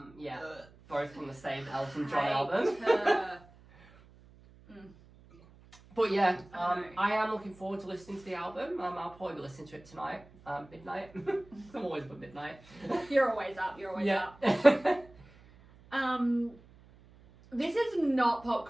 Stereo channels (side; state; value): right; noise; hum, 24 dB below the sound